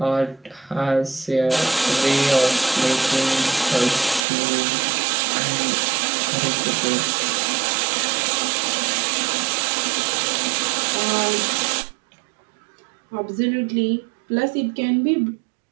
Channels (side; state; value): left; drops out; at 4.2 s